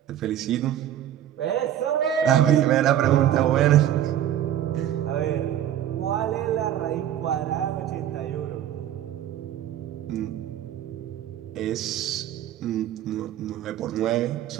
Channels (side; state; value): left; quieter; 11.2 dB